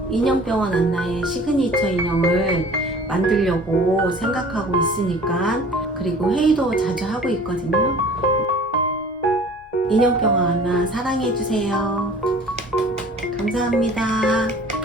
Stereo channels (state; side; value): normal; both; correlation 0.46